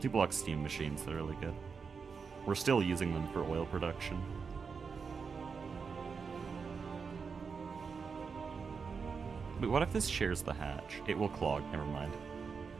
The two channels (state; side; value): quieter; left; 5.5 dB